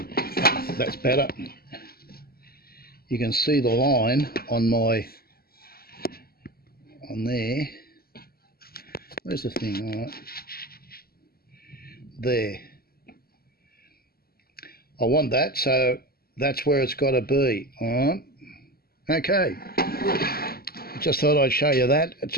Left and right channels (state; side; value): late; right; 0.44 ms